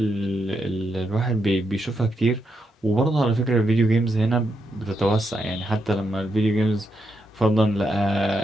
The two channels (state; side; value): normal; both; correlation 0.82